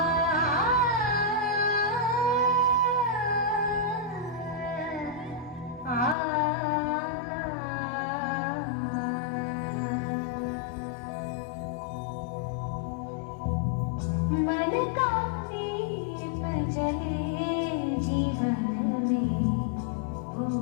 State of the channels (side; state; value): right; drops out; at 6.2 s